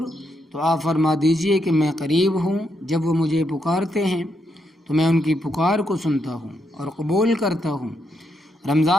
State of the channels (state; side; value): normal; both; correlation 0.80